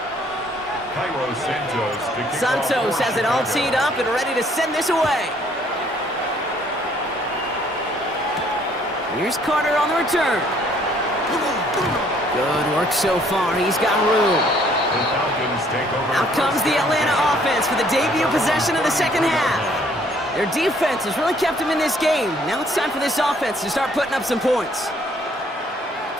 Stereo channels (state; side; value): normal; both; correlation 0.62